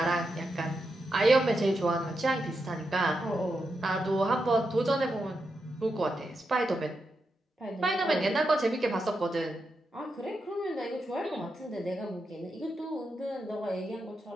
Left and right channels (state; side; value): normal; both; correlation 0.86